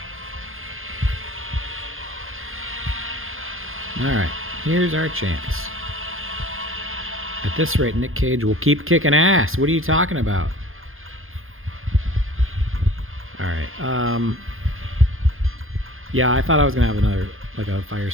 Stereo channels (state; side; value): late; left; 0.60 ms